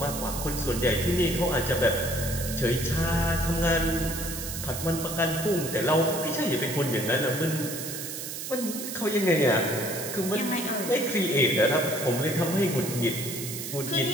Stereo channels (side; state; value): right; noise; hiss, 7 dB below the sound